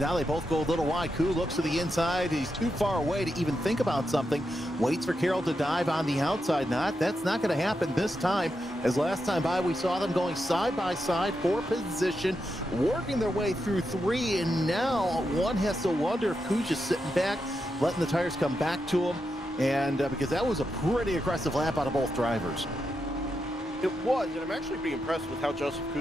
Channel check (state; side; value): normal; both; correlation 0.86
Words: now they both go a little wide. Koo looks to the inside. He's too far away to even think about something. Waits for Carroll to dive on the outside. That's not going to happen this time, as last time by we saw them going side by side for position, working their way through 3, and now one has to wonder if Koo's just sitting back, letting the tires come back to him, and because that was a pretty aggressive lap out of both drivers. It was, and I'm actually pretty impressed with how Joseph